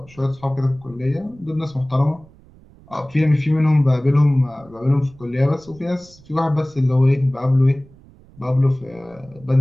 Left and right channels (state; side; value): noise; right; rumble, 25 dB below the sound